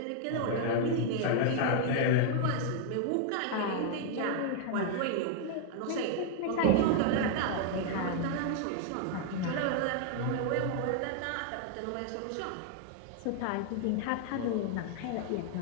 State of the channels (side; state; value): both; different; correlation 0.00